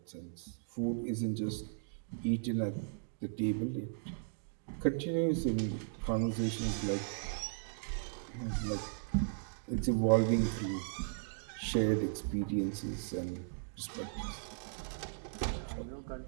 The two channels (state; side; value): silent; left; digital silence